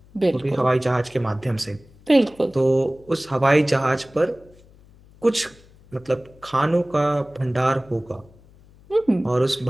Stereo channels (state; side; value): noise; left; hum, 26 dB below the sound